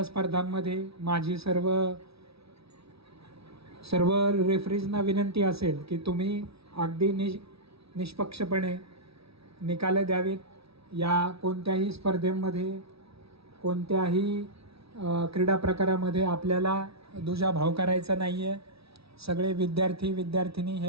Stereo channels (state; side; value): late; left; 0.77 ms